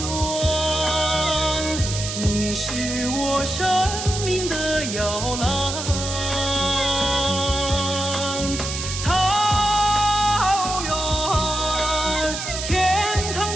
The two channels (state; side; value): noise; right; hiss, 5 dB below the sound